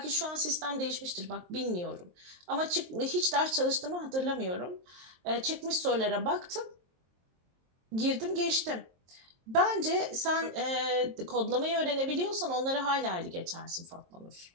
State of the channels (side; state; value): left; late; 23 ms